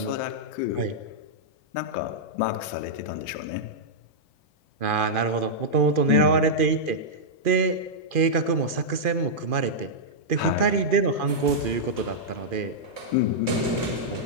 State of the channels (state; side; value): late; left; 2.5 ms